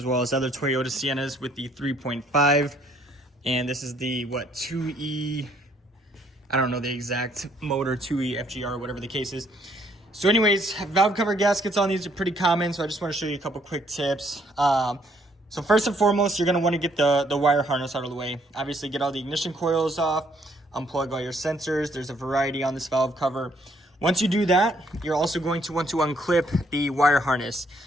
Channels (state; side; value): normal; both; correlation 0.67